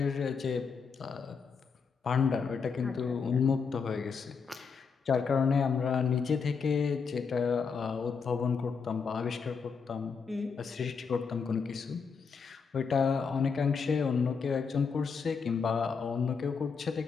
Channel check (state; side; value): quieter; right; 5.6 dB